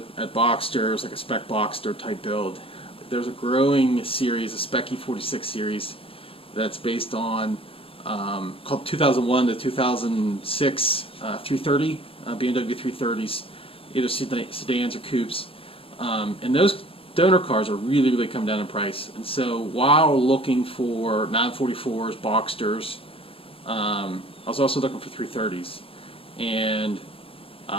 at Boxsters, like a Spec Boxster type build. There's a growing series, a Spec E46 series, that's based on called 2001 to 2006 330 BMW 330s, either sedans or coupes, and those donor cars are really come down in price. And so while looking for 944s, Boxsters, I was also looking for 330s, and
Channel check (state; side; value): late; right; 0.27 ms